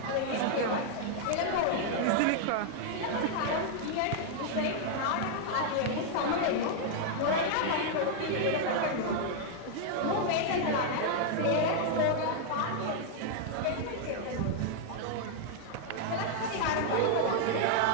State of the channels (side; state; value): both; different; correlation 0.00